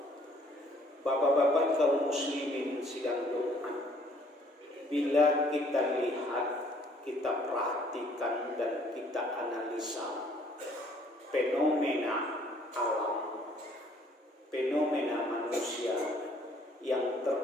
Bapak-bapak kaum muslimin sidang Jumat, bila kita lihat, kita perhatikan dan kita analisa fenomena alam, fenomena manusia yang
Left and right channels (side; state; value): both; normal; correlation 0.61